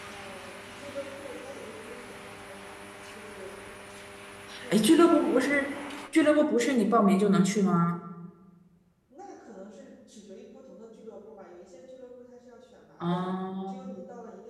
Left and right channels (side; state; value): both; identical; correlation 1.00